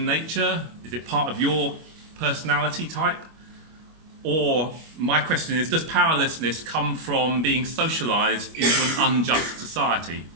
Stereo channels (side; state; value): left; late; 25 ms